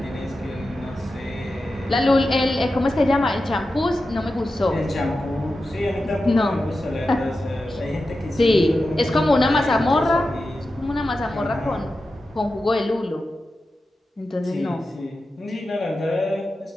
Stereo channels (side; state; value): both; normal; correlation 0.91